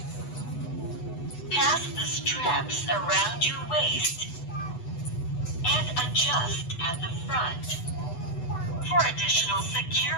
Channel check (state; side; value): late; right; 8.0 ms